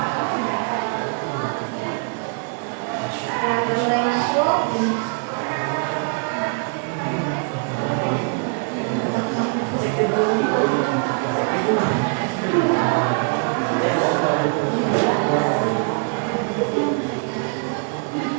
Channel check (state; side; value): quieter; left; 39.3 dB